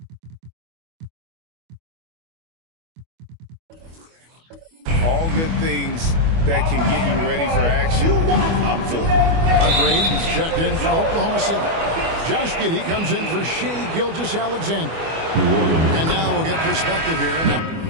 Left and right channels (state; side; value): late; left; 25 ms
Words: All good things that can get you ready for action, I'm for. Graves checked in for Oklahoma City. Josh Giddey comes in for Shai Gilgeous-Alexander. And now we'll get perspective here. Now,